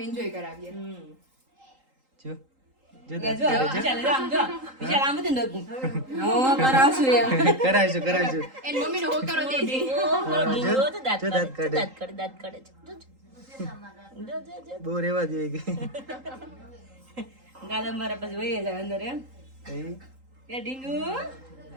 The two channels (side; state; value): left; late; 3.8 ms